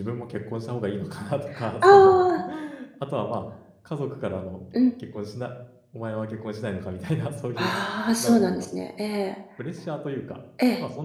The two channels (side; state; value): both; identical; correlation 1.00